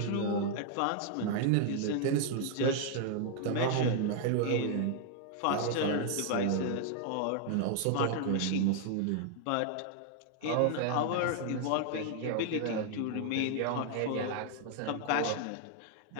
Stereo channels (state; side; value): different; both; correlation 0.00